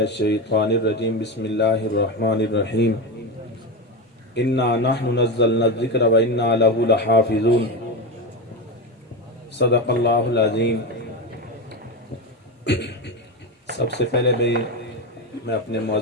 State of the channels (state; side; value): normal; both; correlation 0.17